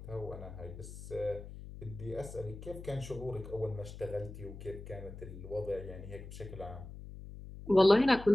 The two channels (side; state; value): left; noise; hum, 12 dB below the sound